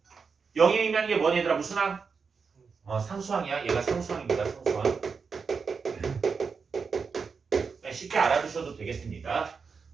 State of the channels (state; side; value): quieter; left; 5.4 dB